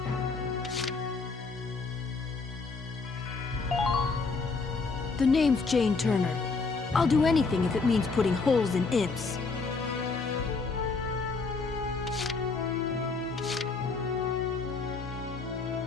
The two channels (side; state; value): right; quieter; 4.2 dB